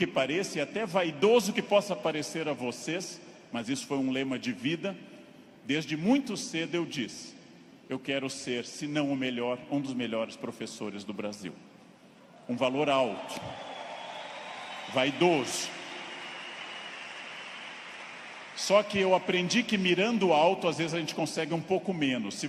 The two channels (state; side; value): identical; both; correlation 1.00